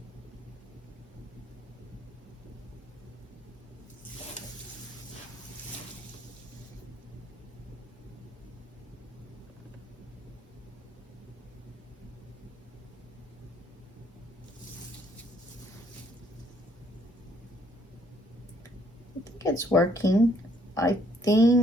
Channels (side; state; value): both; normal; correlation 0.66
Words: I think it's working. I